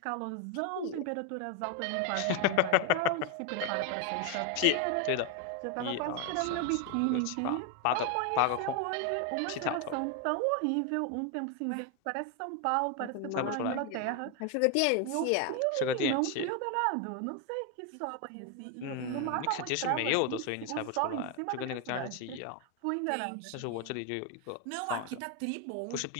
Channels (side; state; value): both; different; correlation 0.01